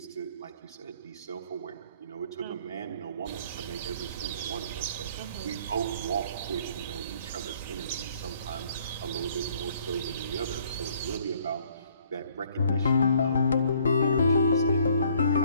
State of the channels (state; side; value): inverted; both; correlation -0.61